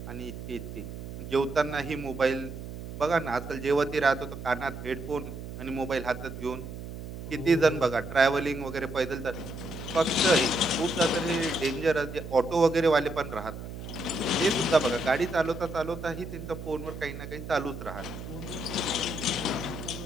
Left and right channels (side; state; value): right; noise; hum, 9 dB below the sound